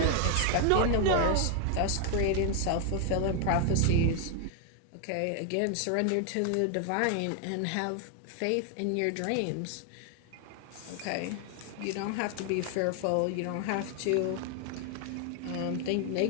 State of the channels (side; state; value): both; different; correlation 0.00